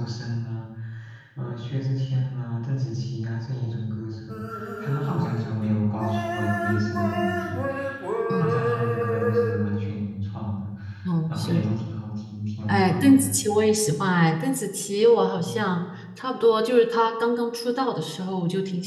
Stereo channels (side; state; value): both; identical; correlation 1.00